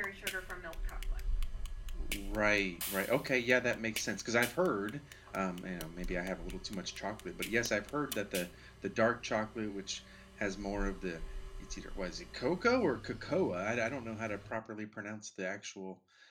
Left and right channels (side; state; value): both; identical; correlation 1.00